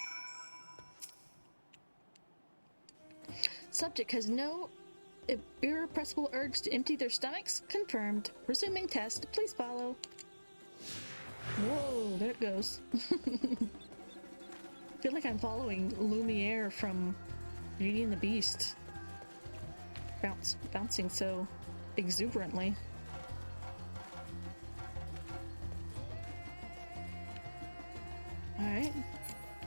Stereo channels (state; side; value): inverted; both; correlation -1.00